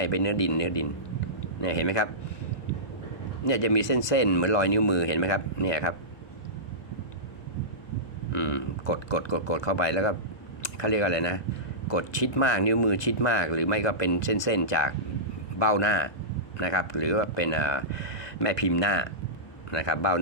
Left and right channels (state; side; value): late; right; 1.2 ms